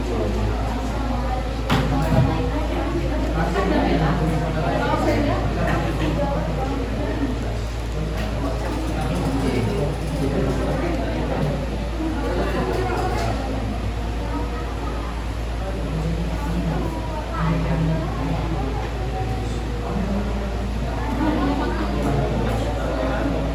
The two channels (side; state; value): both; identical; correlation 1.00